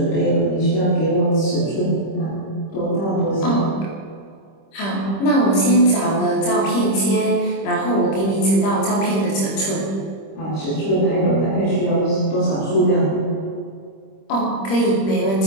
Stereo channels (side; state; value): right; late; 25 ms